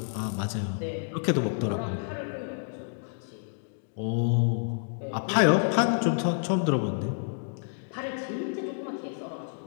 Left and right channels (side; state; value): right; silent; digital silence